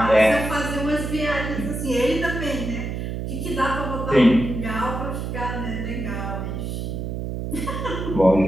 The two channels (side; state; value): right; noise; hum, 4 dB below the sound